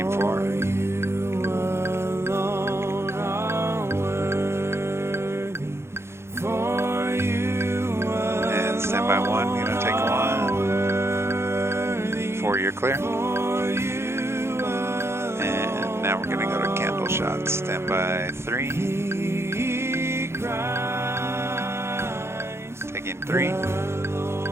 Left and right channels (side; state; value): left; late; 0.12 ms